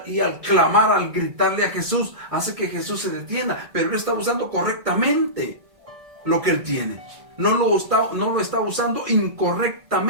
al clamar, al gritarle a Jesús, hace que Jesús se detenga. Pero Él está usando correctamente lo que Él tiene. No lo está usando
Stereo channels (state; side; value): late; left; 1.6 ms